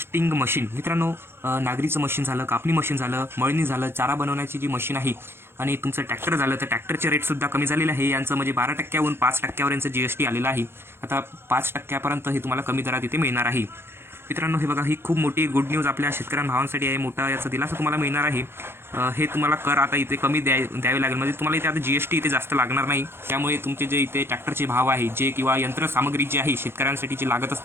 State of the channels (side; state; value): left; late; 0.11 ms